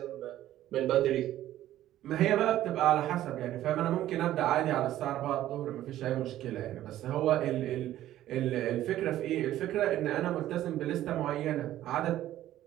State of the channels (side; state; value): left; quieter; 13.4 dB